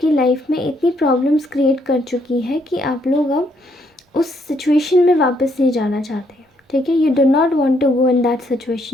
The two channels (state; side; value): normal; both; correlation 0.72